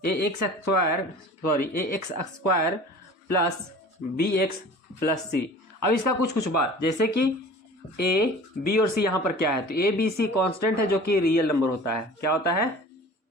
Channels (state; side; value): normal; both; correlation 0.43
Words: A X square plus B X plus C. अब इसका कुछ बात, जैसे कि ए बी और सी यहाँ पर क्या है, तो ए बी सी कॉन्स्टेंट है जो कि रियल नंबर होता है। क्या होता है?